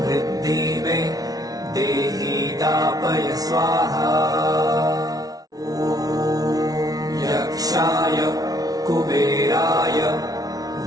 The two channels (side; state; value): left; late; 0.18 ms